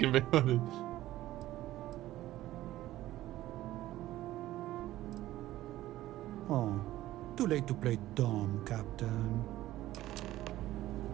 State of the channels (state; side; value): quieter; left; 15.1 dB